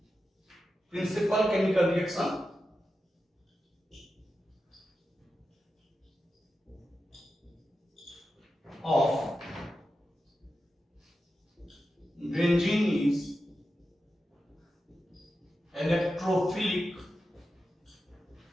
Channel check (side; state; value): both; normal; correlation 0.90